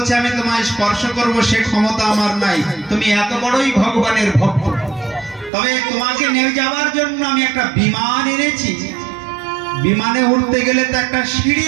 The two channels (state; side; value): drops out; left; at 5.5 s